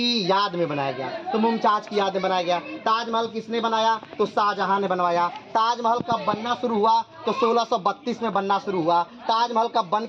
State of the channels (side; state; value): both; identical; correlation 1.00